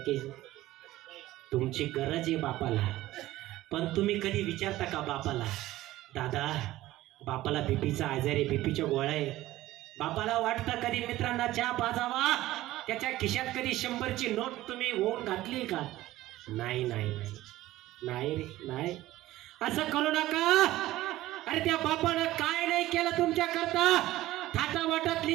तुमची गरज आहे बापाला. पण तुम्ही कधी विचारता का बापाला, दादा बापाला बीपीचा आजार आहे, बीपीच्या गोळ्या आहे? बापाला वाटतं कधी मित्रांना चहा पाजावा? त्याच्या खिशात कधी 100ची नोट तुम्ही होऊन घातली का? नाही नाही नाही नाही रे नाही. असं करू नका. अरे त्या बापानं काय नाही केलं तुमच्या करता? थाटावाटात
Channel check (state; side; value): quieter; left; 16.1 dB